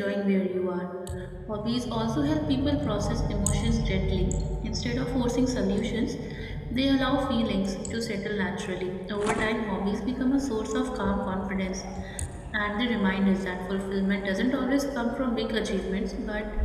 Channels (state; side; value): identical; both; correlation 1.00